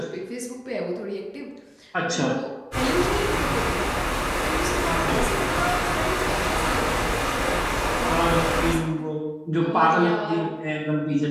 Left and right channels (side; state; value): both; identical; correlation 1.00